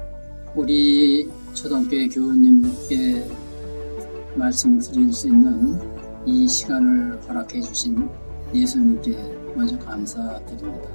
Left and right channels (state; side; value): inverted; both; correlation -1.00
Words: 우리 초등교회 교우님께 말씀드릴 수 있는 이 시간을 허락해 주신 예수님께 먼저 감사드립니다.